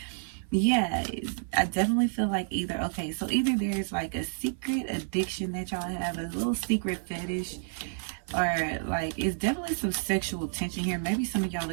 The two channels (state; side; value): silent; left; 57 dB below the other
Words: yeah, I definitely feel like either there's like a secret addiction that y'all have, a little secret fetish, or like it's definitely some sexual tension here. Maybe some of y'all